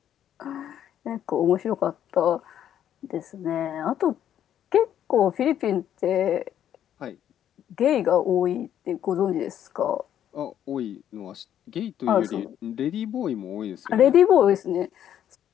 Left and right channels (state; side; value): quieter; right; 10.3 dB